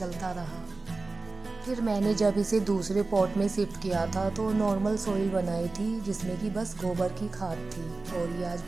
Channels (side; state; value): left; quieter; 3.5 dB